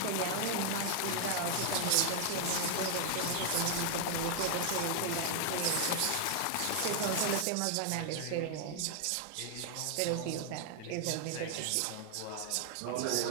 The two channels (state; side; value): different; both; correlation 0.00